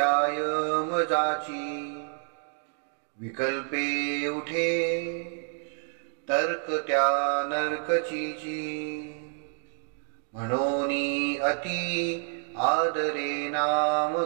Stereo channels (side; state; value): left; silent; 59 dB below the other